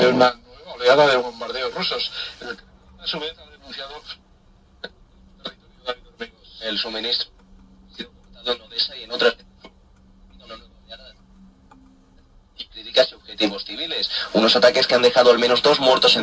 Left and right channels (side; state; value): both; identical; correlation 1.00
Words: una nueva oleada de bombardeos rusos. A su vez ha denunciado el suministro ha sido cortado en Odessa y en otras una nueva oleada y críticas y objetivos civiles. Unos ataques que han dejado al menos 2 muertos